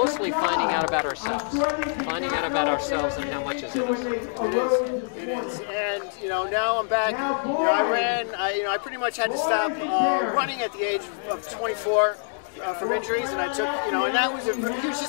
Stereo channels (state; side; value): silent; right; digital silence